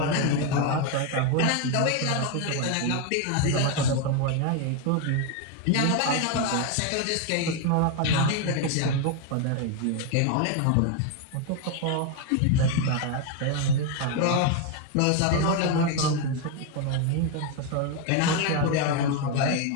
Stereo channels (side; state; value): both; different; correlation 0.01